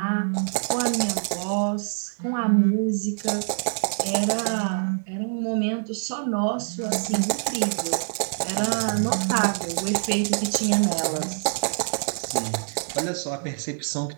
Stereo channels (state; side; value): silent; left; digital silence